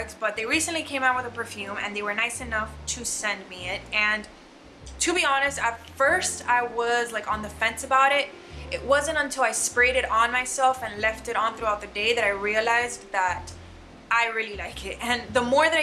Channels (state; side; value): identical; both; correlation 1.00